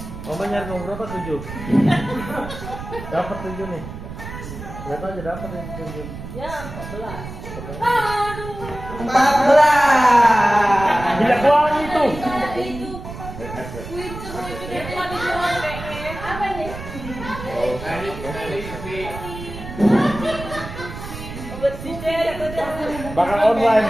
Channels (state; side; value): noise; right; rumble, 10 dB below the sound